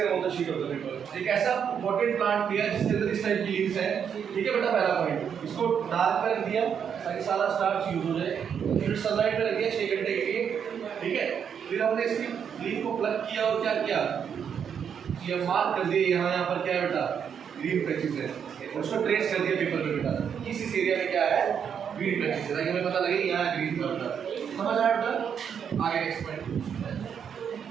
on the sheet of the paper। एक ऐसा पोटेड प्लांट लिया जिसके अंदर इस टाइप की लीव्स है, ठीक है बेटा? पहला पॉइंट, इसको डार्क पर रख दिया ताकि सारा स्टार्च यूज हो जाए, फिर सनलाइट में रख दिया 6 घंटे के लिए, ठीक है? फिर हमने इसकी लीफ को प्लग किया और क्या किया? ये मार्क कर दिया यहाँ पर क्या है बेटा? ग्रीन पैचेस है, उसको ट्रेस कर दिया पेपर पे बेटा, किस एरिया में क्या है? ग्रीन पैचेस है, ताकि हमें पता लगे यहाँ ग्रीन था बेटा। समझ आया बेटा? आगे next point,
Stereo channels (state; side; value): quieter; left; 7.7 dB